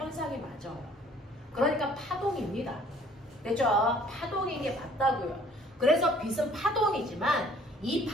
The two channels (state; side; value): normal; both; correlation 0.57